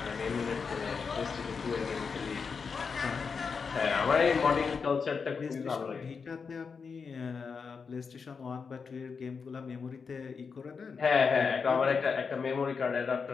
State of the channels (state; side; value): quieter; right; 5.5 dB